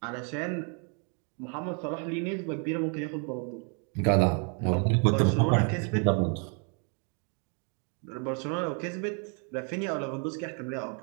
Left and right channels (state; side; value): quieter; left; 38.8 dB